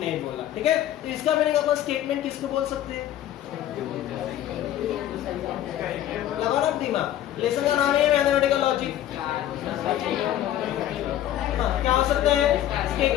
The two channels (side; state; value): right; quieter; 12.3 dB